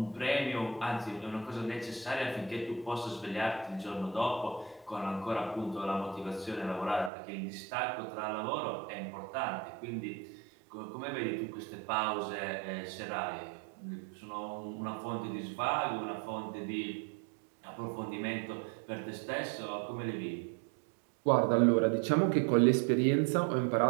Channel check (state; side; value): drops out; left; at 7.1 s